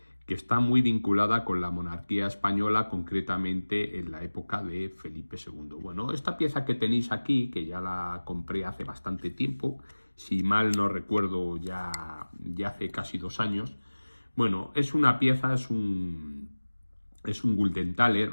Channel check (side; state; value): both; inverted; correlation -1.00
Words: que está muy vinculada con la monarquía española, concretamente en la época de Felipe II. Bueno, esta pieza que tenéis aquí, que ya la compré hace bastante tiempo, si mal no recuerdo ya hace casi 2 años, bueno, es una pieza, es un